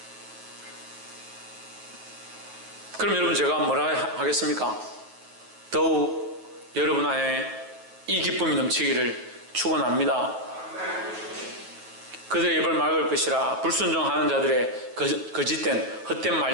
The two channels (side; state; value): left; late; 9.3 ms